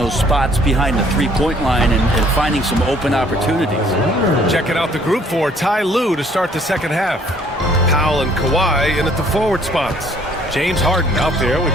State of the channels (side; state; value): both; normal; correlation 0.60